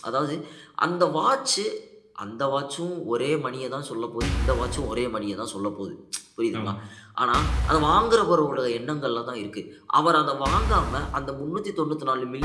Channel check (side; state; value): both; identical; correlation 1.00